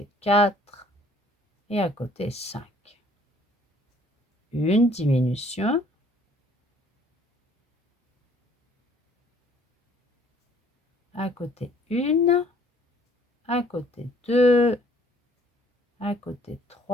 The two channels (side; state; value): both; normal; correlation 0.59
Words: 4 et à côté 5. Une diminution. À côté 1, à côté 2, à côté